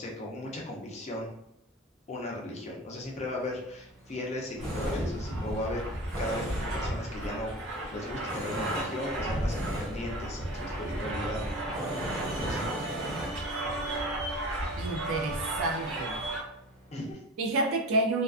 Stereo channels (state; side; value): normal; both; correlation 0.34